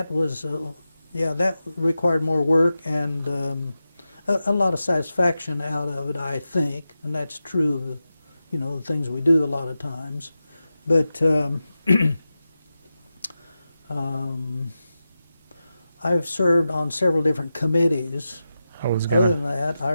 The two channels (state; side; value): inverted; both; correlation -0.92